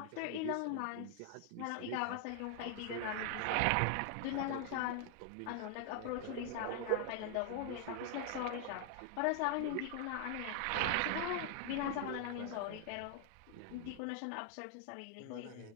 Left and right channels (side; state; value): both; different; correlation 0.00